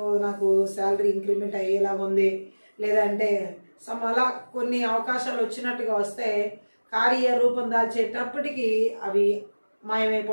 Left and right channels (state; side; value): inverted; both; correlation -1.00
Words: నాకు శాలరీ ఇంక్రిమెంట్ అయ్యేలా ఉంది, లేదంటే అలా కొన్ని అవకాశాలు వచ్చినట్టుగా వస్తే కార్యరూపం దాల్చేటప్పటికి అవి